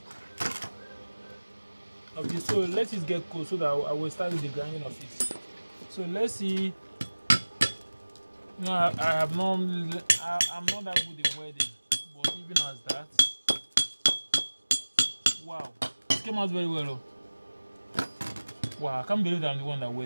of this. So let it get cold so that I will start with the grinding of it. So let's see. No, I have not. I'm not that good in welding, but even as that, wow, it came out very well. Oh. Wow, I can't believe I'm the one that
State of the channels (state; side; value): inverted; both; correlation -1.00